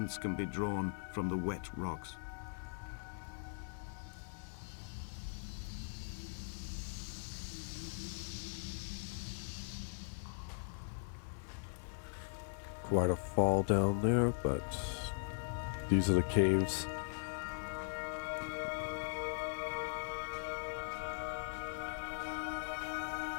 can be drawn from the wet rocks. Quite a fall down there, but these are the caves.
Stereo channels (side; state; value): right; silent; 51 dB below the other